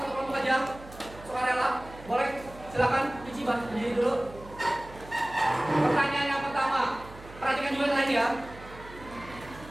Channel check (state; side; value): noise; right; hum, 18 dB below the sound